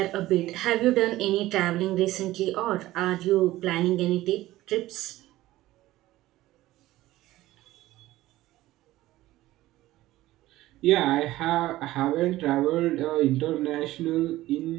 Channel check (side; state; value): left; quieter; 16.3 dB